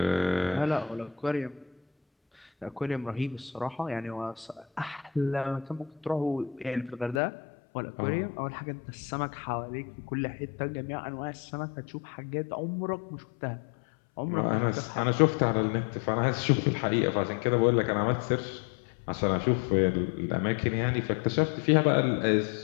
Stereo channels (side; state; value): right; drops out; at 7.2 s